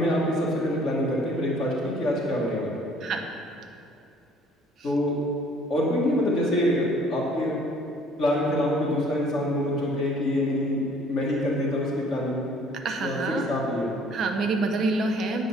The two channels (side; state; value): both; normal; correlation 0.57